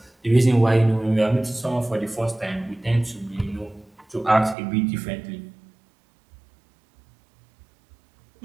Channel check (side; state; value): left; drops out; at 4.5 s